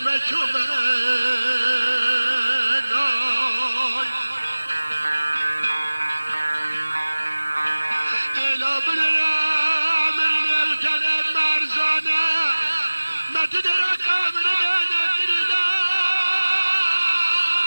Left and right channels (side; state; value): both; inverted; correlation -1.00